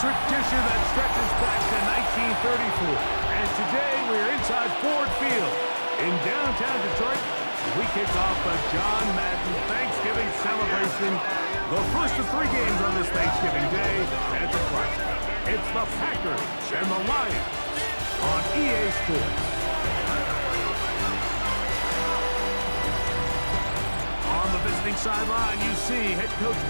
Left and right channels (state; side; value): inverted; both; correlation -1.00